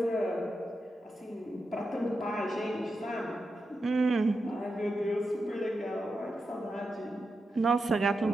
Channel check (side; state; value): both; normal; correlation 0.88